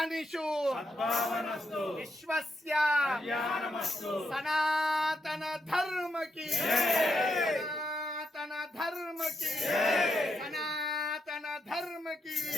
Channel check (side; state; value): both; normal; correlation 0.81